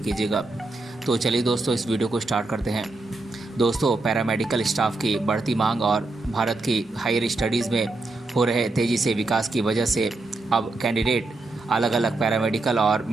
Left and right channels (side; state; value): left; quieter; 3.1 dB